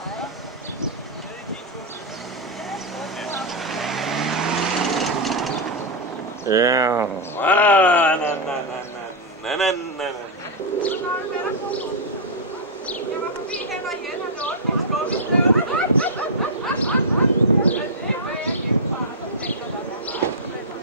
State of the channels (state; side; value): normal; both; correlation -0.05